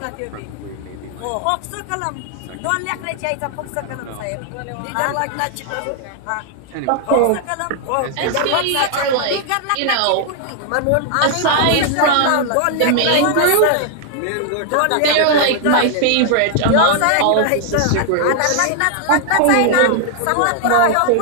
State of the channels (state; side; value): different; both; correlation 0.00